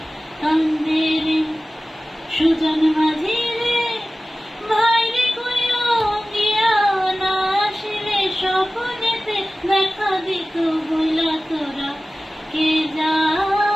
কান্দে রে। সুজন মাঝি রে ভাই রে কইও গিয়া, না আসিলে স্বপ্নেতে দেখা দিত বইলা তোরা। কে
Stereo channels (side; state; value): both; normal; correlation 0.96